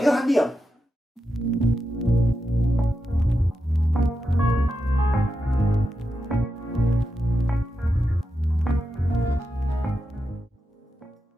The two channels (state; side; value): normal; both; correlation 0.87